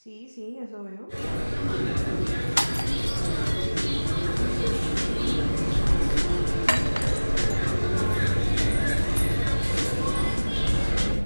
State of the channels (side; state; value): both; inverted; correlation -1.00